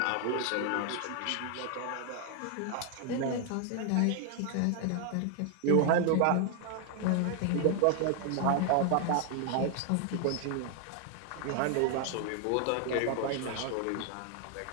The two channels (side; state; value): both; different; correlation 0.00